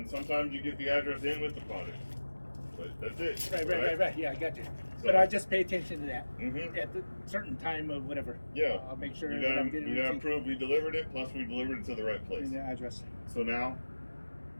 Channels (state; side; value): inverted; both; correlation -1.00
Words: sometimes you get the address in with the product. But that's it. Right. Yeah, I got you. So, but I just pay attention to that. Mm-hmm. At the certain time of whatever. Yeah. I'll make sure you that I'm getting you gotta prove we delivered it, plus we delivered it to the right place. in the address. So now,